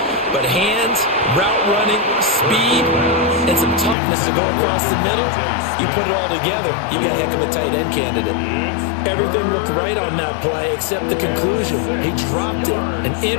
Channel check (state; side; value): drops out; right; at 4.0 s